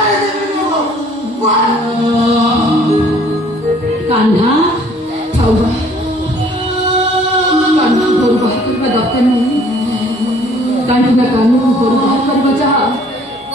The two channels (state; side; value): normal; both; correlation 0.57